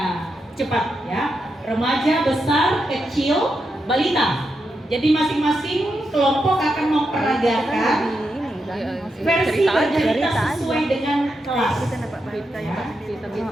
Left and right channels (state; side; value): normal; both; correlation 0.85